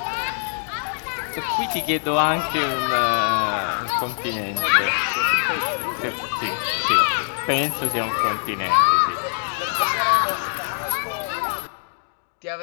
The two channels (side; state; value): right; silent; digital silence